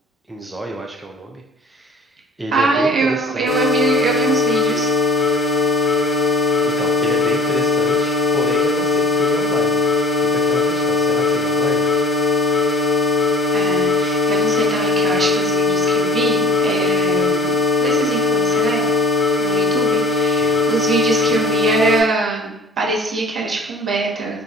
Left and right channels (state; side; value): normal; both; correlation 0.46